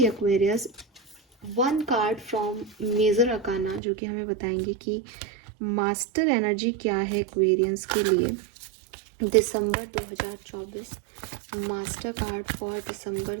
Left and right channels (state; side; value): drops out; left; at 3.8 s